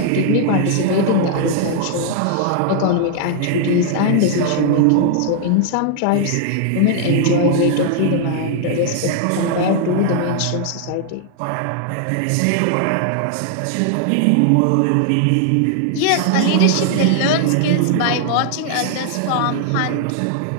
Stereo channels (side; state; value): both; different; correlation -0.01